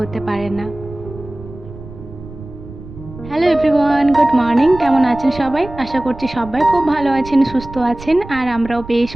পারে না। Hello everyone, good morning. কেমন আছেন সবাই? আশা করছি সবাই খুব ভালো আছেন, সুস্থ আছেন, আর আমরাও বেশ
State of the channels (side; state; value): right; noise; rumble, 15 dB below the sound